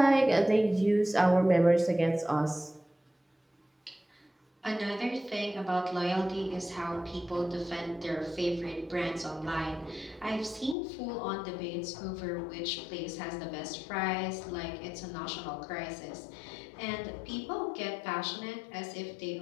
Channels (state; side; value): drops out; right; at 10.8 s